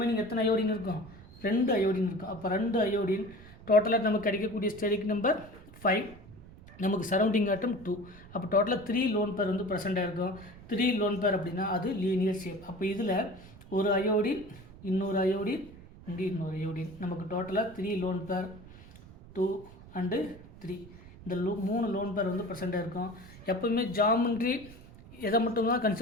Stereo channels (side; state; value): right; noise; rumble, 19 dB below the sound